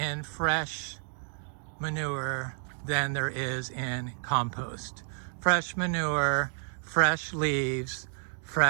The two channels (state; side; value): silent; left; 58 dB below the other